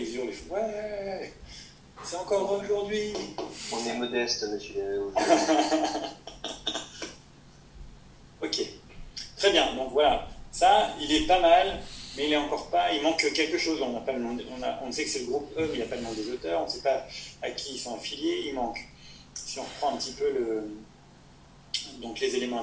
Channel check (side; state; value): both; identical; correlation 1.00